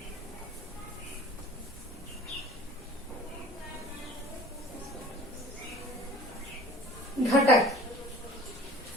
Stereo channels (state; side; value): normal; both; correlation 0.45